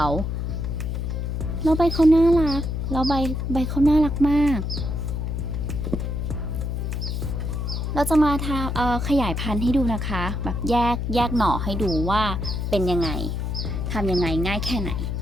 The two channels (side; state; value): left; noise; hum, 2 dB below the sound